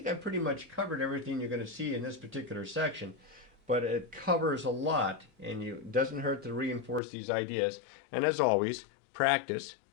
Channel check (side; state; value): right; drops out; at 7.0 s